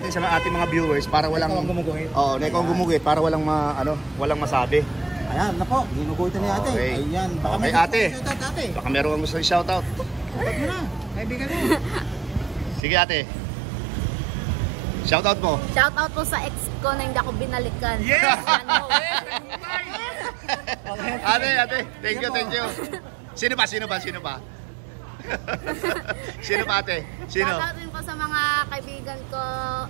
sa ating mga viewers para walang gumuguhit. na ikaw gumuguhit para walang walang masabi. Ayan, na po. Ginuguhitan ni ate. Okay. Ayan. Okay, ate. Shoutout, ate. Baka meron kang gusto i-shoutout. Shoutout mo na. Kaibigan mo. Sige ate. Shoutout mo. Shoutout po sa ex ko na hindi ako binalikan. Yes! Ano? Ate, thank you. Sino pa? Sino pa ate? Sino? Shoutout rin po sa mga kaibigan ko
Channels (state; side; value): drops out; left; at 12.8 s